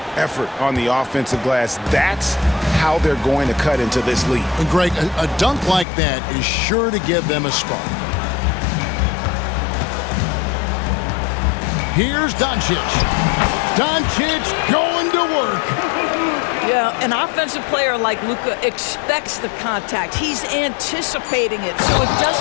effort on the offensive glass. That's how they're going to cut into this lead. And Greg, a dunk like that is sure to give them a spark. Here's Doncic. Doncic going to work. Yeah, an offensive player like Luka expects the contact. He's anticipating it, so it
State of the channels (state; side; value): drops out; right; at 5.9 s